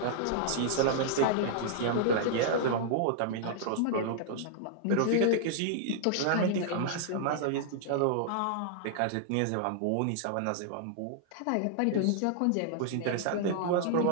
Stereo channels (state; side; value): different; both; correlation -0.01